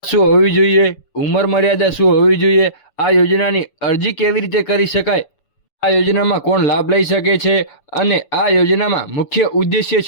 શું હોવી જોઈએ, ઉંમર મર્યાદા શું હોવી જોઈએ, આ યોજનાની અરજી કેવી રીતે કરી શકાય, આ યોજનામાં કોણ લાભ લઈ શકે છે અને આ યોજનામાં મુખ્ય ઉદ્દેશ્ય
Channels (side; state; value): right; late; 6.9 ms